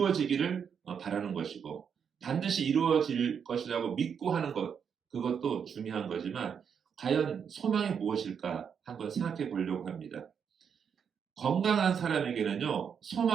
바라는 것이고 반드시 이루어질 것이라고 믿고 하는 것, 그것도 중요한 거지만 과연 소망이 무엇일까 한번 생각해 보려고 합니다. 건강한 사람에게는요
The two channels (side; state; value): left; quieter; 7.2 dB